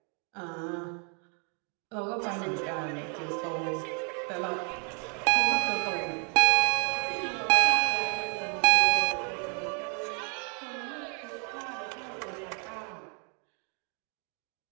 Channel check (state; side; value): quieter; left; 39.3 dB